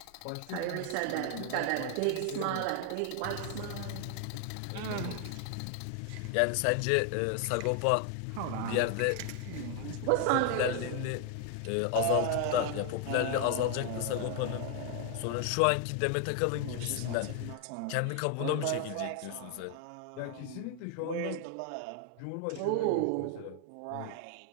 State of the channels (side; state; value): both; different; correlation 0.00